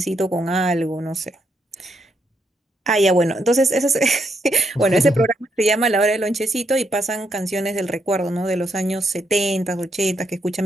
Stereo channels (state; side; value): normal; both; correlation 0.78